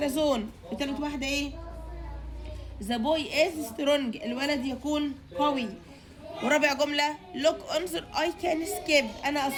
وتالت واحده ايه؟ the boy is strong، الولد يكون قوي. ورابع جمله look انظر I can skip، انا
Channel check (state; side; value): identical; both; correlation 1.00